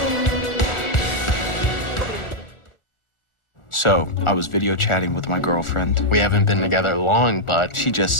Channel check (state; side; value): late; right; 1.4 ms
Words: So, I was video chatting with my girlfriend. We haven't been together long, but She